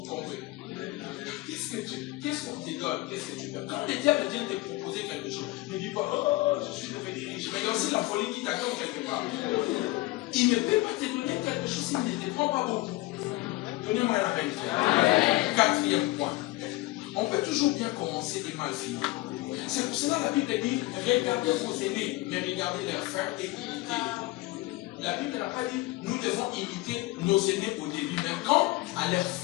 comprenez? Qu'est-ce qu'on te donne? Qu'est-ce que tu perds? Quand le diable vient te proposer quelque chose, ne dis pas, oh, je suis devenu riche, mais il y a aussi la folie qui t'attend quelque part. Il ne peut pas te donner quelque chose s'il ne te prend pas beaucoup. Donnez-moi la vérité. Quatrième point. On peut toujours bien commencer et mal finir. C'est pour cela que la Bible dit, regardez vos aînés, mais regardez leurs frères et imitez-les. La Bible n'a pas dit, nous devons imiter nos aînés au début, mais quand à leur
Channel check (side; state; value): right; quieter; 19.7 dB